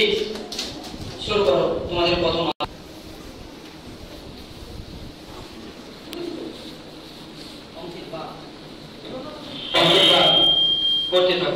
শুরু করো তোমাদের প্রথম করতে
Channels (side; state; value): both; identical; correlation 1.00